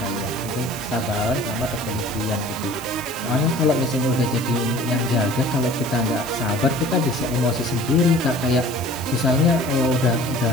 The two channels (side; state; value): right; noise; hiss, 14 dB below the sound